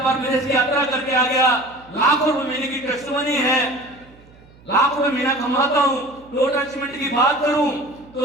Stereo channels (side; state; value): right; noise; hum, 26 dB below the sound